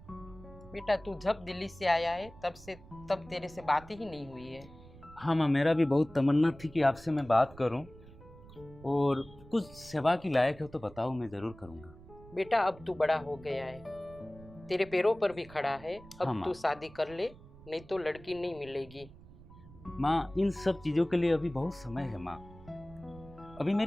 बेटा तू जब दिल्ली से आया है तब तेरे से बात ही नहीं हुई है। हाँ माँ, मेरा भी बहुत तमन्ना थी कि आपसे मैं बात करूं, और कुछ सेवा की लायक है तो बताओ, मैं ज़रूर करूँगा। बेटा अब तू बड़ा हो गया है, तेरे पैरों पर भी खड़ा है, अब हाँ, तू शादी कर ले, नहीं तो लड़की नहीं मिलेगी। माँ इन सब चीज़ों के लिए अभी बहुत समय है माँ, अभी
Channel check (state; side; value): noise; right; rumble, 20 dB below the sound